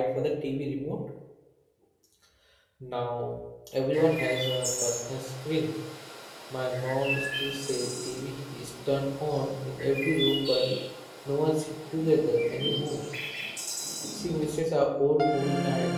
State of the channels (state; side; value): identical; both; correlation 1.00